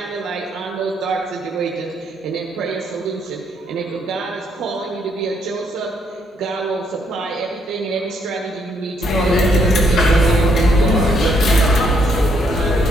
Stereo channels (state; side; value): normal; both; correlation 0.72